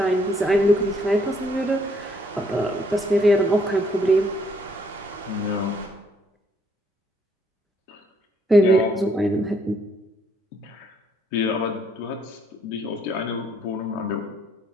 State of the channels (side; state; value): both; normal; correlation 0.68